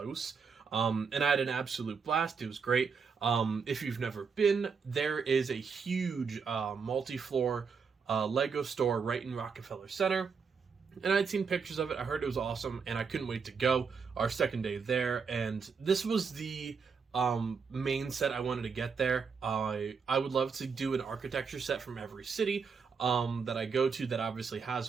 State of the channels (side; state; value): left; quieter; 5.7 dB